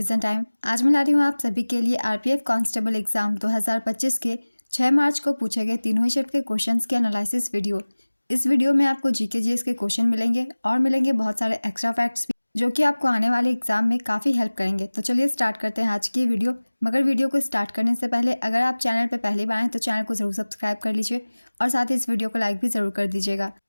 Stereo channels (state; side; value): inverted; both; correlation -1.00